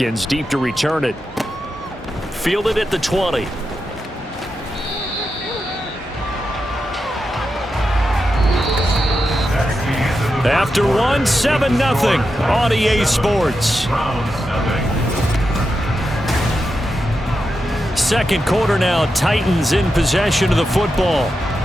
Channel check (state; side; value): normal; both; correlation 0.88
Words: deep to return it. Fielded at the 20. After 1, 7-0 on EA Sports. Second quarter now, Titans in possession of the football